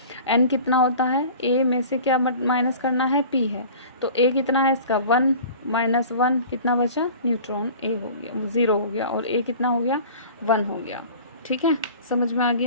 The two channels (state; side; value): inverted; both; correlation -0.42